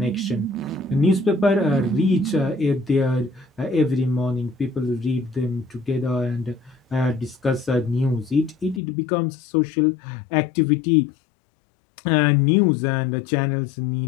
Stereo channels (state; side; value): drops out; right; at 8.8 s